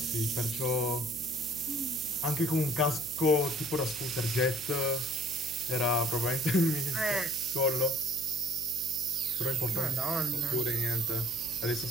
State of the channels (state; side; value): noise; right; hum, 18 dB below the sound